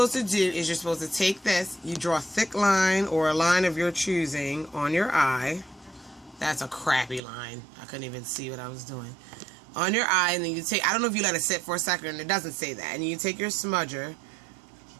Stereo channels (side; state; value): left; drops out; at 7.2 s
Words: to do is you're supposed to take this, you draw a thick line or a line of your choosing on your eye. That's a crappy line. I couldn't even see what I was doing. On your eye, and then you take, I don't know if you let it sit for a second, and it doesn't say that, and you take your smudger,